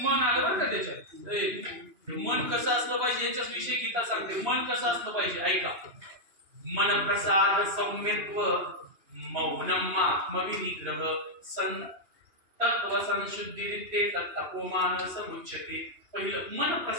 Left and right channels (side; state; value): left; late; 2.9 ms